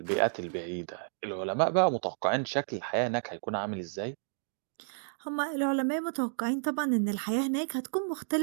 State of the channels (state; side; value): silent; left; digital silence